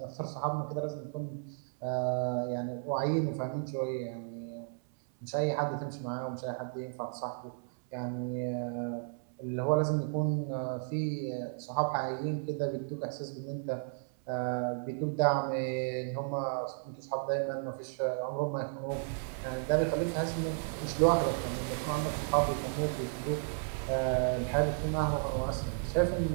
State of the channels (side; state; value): left; silent; 55 dB below the other